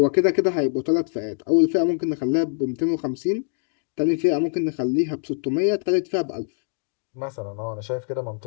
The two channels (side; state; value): right; silent; 63 dB below the other